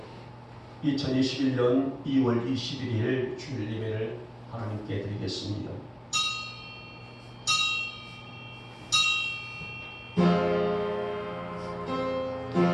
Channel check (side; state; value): both; identical; correlation 1.00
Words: 2021년 2월 21일 주일 예배를 하나님께 드리겠습니다.